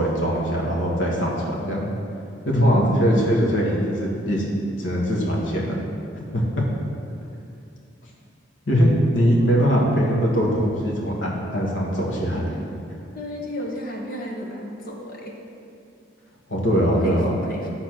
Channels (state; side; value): normal; both; correlation 0.67